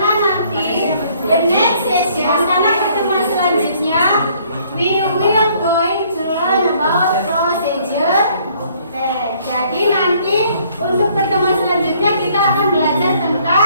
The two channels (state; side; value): inverted; both; correlation -0.62